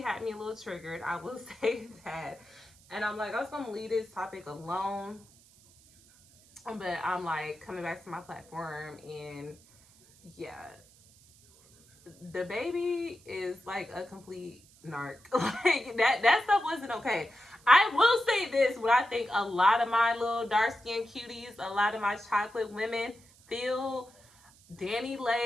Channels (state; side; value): noise; right; hiss, 27 dB below the sound